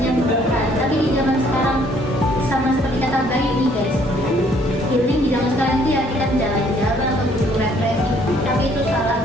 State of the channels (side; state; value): both; normal; correlation 0.63